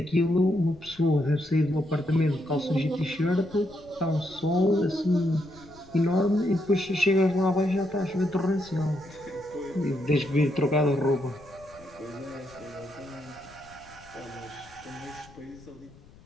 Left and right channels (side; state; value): left; noise; rumble, 24 dB below the sound